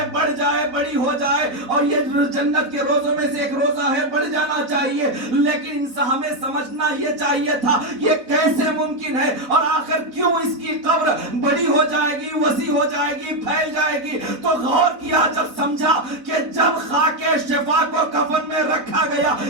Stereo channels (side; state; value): left; late; 4.0 ms